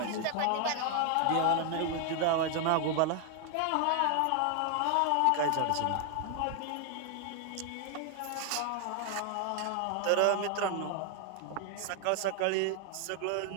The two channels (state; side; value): different; both; correlation 0.01